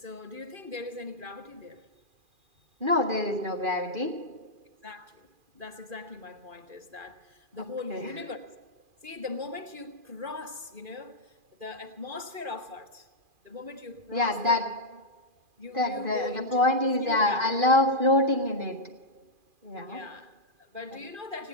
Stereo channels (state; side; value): late; left; 2.4 ms